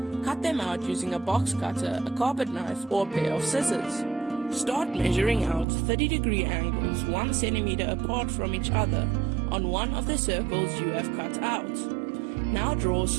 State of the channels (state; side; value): drops out; left; at 5.7 s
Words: Cut them out using a box cutter, a carpet knife, or a pair of scissors. Start measuring out 30-degree angles 1 centimeter apart from each other on one of the circles you have cut out. Now draw